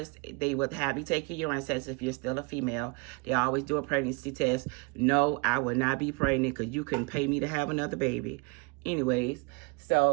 they would have you take your urine test if you're still a female. They always do a pregnancy test. No, I would not be pregnant because you couldn't pay me to have another baby. Anyways,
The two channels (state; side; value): quieter; left; 29.2 dB